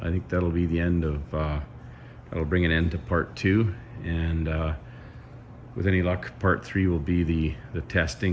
I think that'll be the end of, that'll bring an end to part 2, and with any luck part 3 will be the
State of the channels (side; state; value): both; identical; correlation 1.00